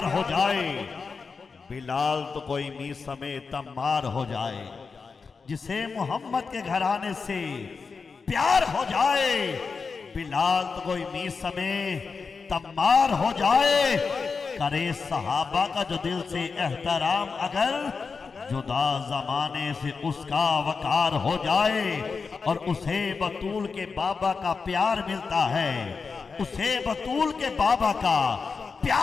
ہو جائے بلال تو کوئی می سمیت تمار ہو جائے. جسے محمد کے گھرانے سے پیار ہو جائے بلال تو کوئی می سمیت تمار ہو جائے. کرے صحابہ کا جو دل سے احترام اگر جدا زمانے سے اس کا وقار ہو جائے. اور اسے بطول کے بابا کا پیار ملتا ہے, اسے بطول کے بابا کا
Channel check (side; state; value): right; quieter; 4.9 dB